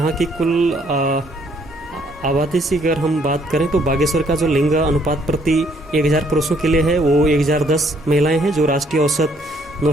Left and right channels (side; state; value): both; normal; correlation 0.66